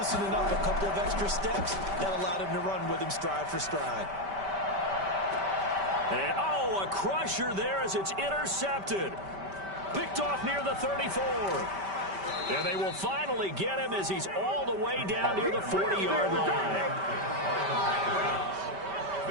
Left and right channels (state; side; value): late; left; 5.1 ms